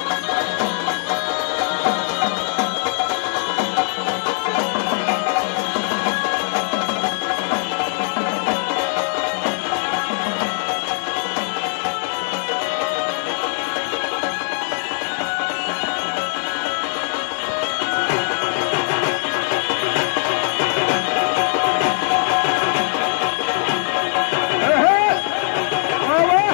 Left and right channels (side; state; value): right; silent; 65 dB below the other